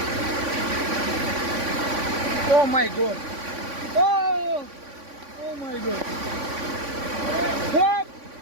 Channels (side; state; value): left; late; 3.5 ms